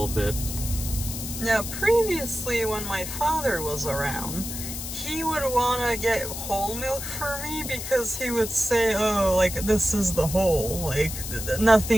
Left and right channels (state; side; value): noise; left; hiss, 7 dB below the sound